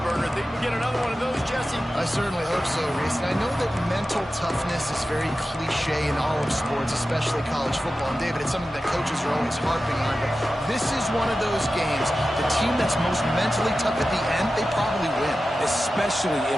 burner. Think we get another one of those, Jesse? I certainly hope so, Reese. And I know that mental toughness is very cliche in all of sports, especially college football. And David, it's something that coaches are always harping on. But this is one of those games. The team that's most mentally tough at the end, they probably win. Especially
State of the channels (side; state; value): both; normal; correlation 0.94